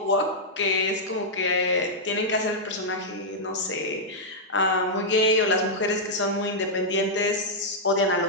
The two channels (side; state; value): both; normal; correlation -0.07